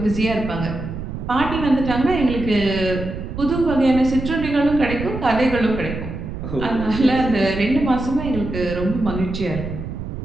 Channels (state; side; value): noise; right; rumble, 7 dB below the sound